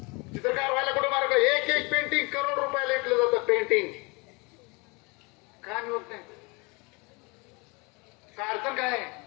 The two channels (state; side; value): quieter; right; 28.3 dB